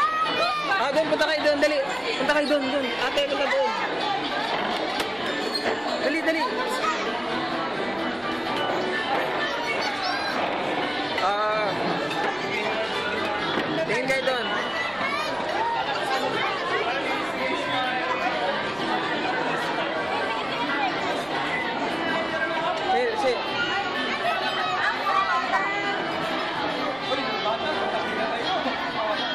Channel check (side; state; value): right; noise; rumble, 24 dB below the sound